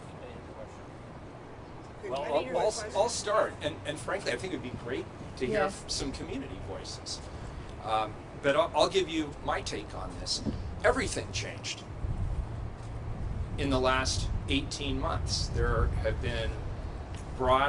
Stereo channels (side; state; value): both; identical; correlation 1.00